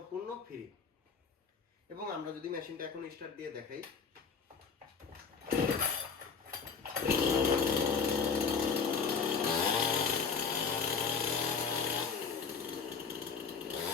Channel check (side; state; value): right; quieter; 5.7 dB